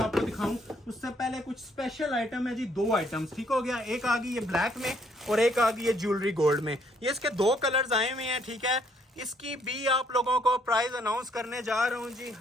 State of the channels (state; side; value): normal; both; correlation 0.67